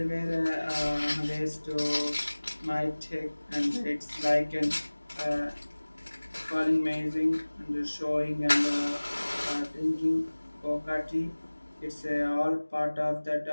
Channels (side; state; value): both; inverted; correlation -1.00